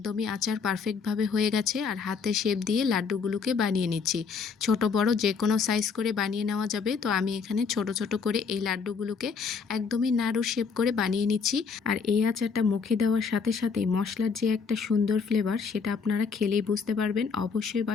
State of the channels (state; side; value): quieter; right; 5.5 dB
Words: আচার পারফেক্টভাবে হয়ে গেছে। আর হাতে শেপ দিয়ে লাড্ডুগুলোকে বানিয়ে নিচ্ছি। ছোট বড় যে কোনো সাইজ করে বানিয়ে নেওয়া যাবে। তো আমি এখানে ছোট ছোট করে এই লাড্ডুগুলোকে একদমই নাড়ু শেপ করে বানিয়ে নিচ্ছি। আর এই আচারটা মুখে দেওয়ার সাথে সাথেই মশলার যে একটা সুন্দর ফ্লেভার সেটা আপনারা খেলেই বুঝতে পারবেন। অবশ্যই